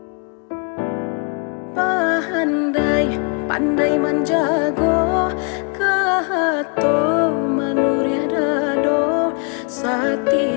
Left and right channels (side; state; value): right; quieter; 36.3 dB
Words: Pandai menjago kehato manuria dado